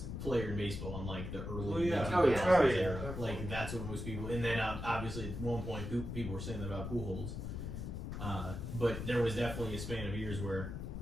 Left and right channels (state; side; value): noise; left; rumble, 6 dB below the sound